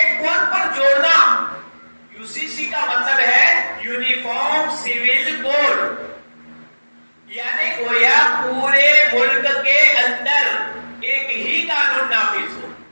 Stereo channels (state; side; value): inverted; both; correlation -1.00